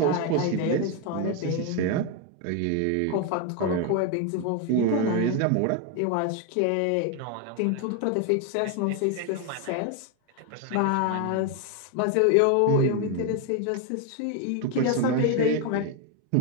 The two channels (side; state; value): both; different; correlation 0.01